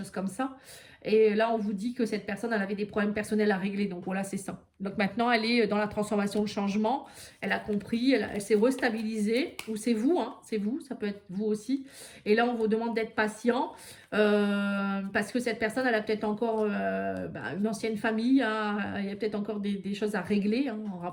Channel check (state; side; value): identical; both; correlation 1.00